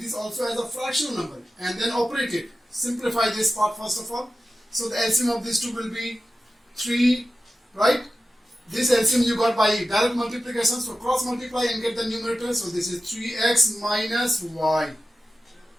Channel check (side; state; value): both; normal; correlation 0.93